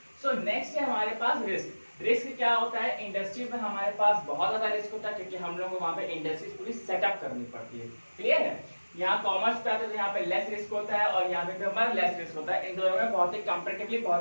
सो नेक्स्ट है हमारे पास रिस्क। रिस्क क्या होता है, इंडस्ट्री में हमारे पास बहुत ज्यादा रिस्क होता है क्योंकि हम लोग को वहां पे इंडस्ट्रीज पूरी सेटअप करनी पड़ती है। क्लियर है? यहाँ कॉमर्स पे आता है तो यहाँ पे लेस रिस्क होता है और यहाँ पे हमारा लेस रिस्क होता है, इन दोनों में बहुत ही कंपैरेटिवली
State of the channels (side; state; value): both; inverted; correlation -1.00